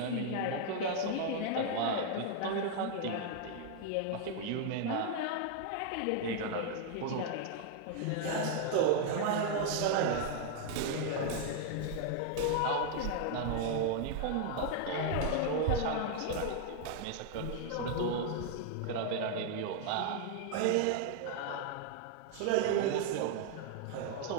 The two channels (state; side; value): different; both; correlation 0.00